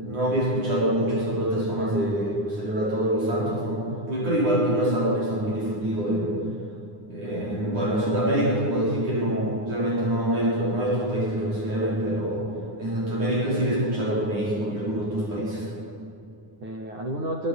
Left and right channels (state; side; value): late; left; 9.7 ms